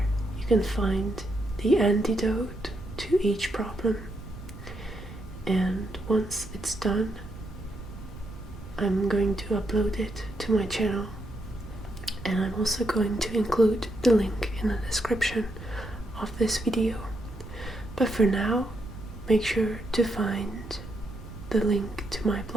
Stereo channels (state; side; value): noise; right; rumble, 14 dB below the sound